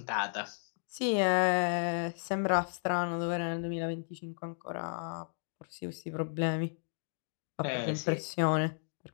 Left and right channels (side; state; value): right; silent; digital silence